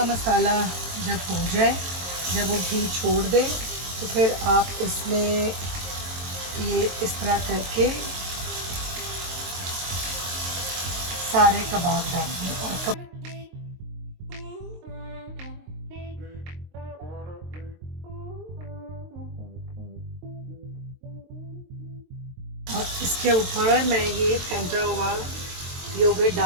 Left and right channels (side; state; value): left; late; 22 ms